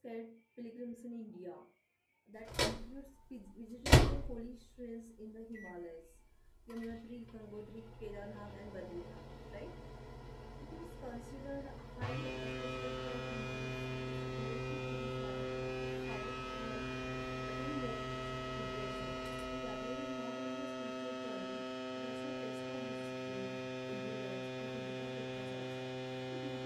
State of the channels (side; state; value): both; identical; correlation 1.00